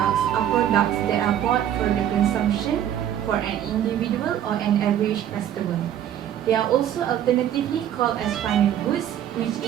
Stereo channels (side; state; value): left; quieter; 10.7 dB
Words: are products that are bought for the consumption for an individual or an average customer. They are also alternatively called as final goods, which